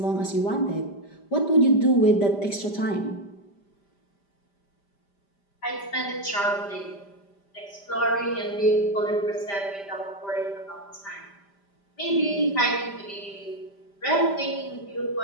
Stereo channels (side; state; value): right; late; 5.0 ms